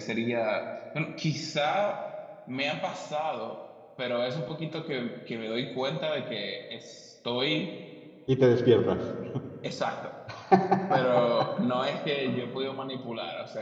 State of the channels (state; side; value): identical; both; correlation 1.00